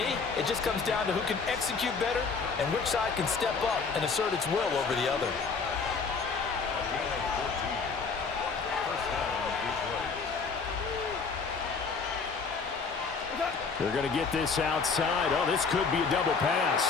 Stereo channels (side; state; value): right; quieter; 4.9 dB